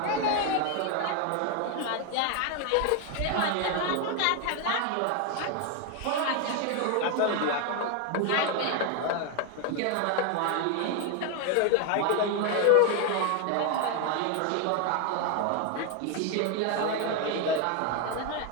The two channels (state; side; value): different; both; correlation 0.01